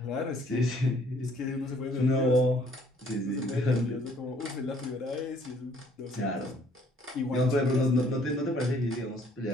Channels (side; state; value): both; normal; correlation 0.61